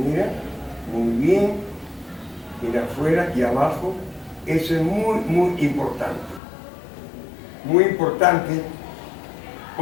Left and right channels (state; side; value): drops out; right; at 6.4 s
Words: muy bien. Mira afuera y abajo, eso es muy, muy importante. Muy importante